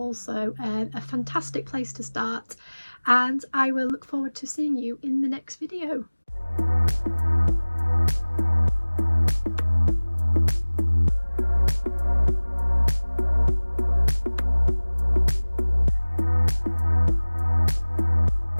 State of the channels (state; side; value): inverted; both; correlation -1.00